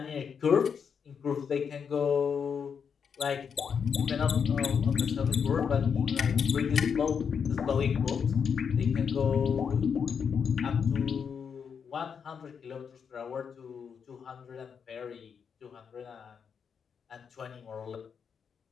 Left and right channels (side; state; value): right; quieter; 6.7 dB